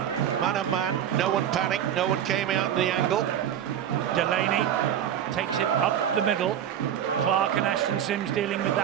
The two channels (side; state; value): left; quieter; 10.0 dB